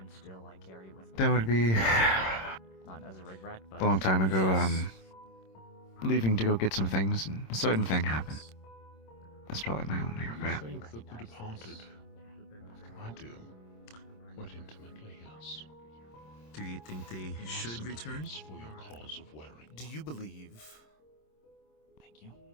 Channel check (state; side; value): late; right; 26 ms